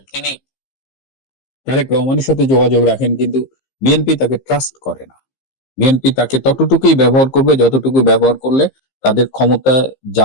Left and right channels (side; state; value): right; late; 15 ms